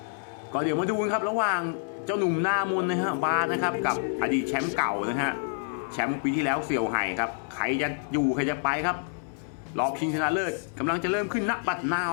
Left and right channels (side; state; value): right; silent; 60 dB below the other